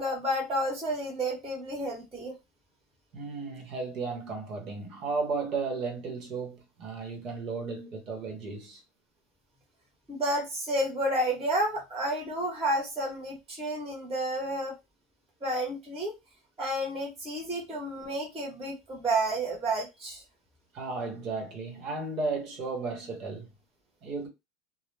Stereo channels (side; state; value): both; normal; correlation 0.38